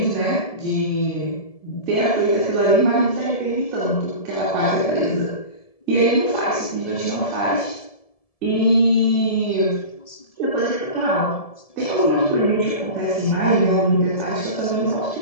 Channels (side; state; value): right; late; 1.7 ms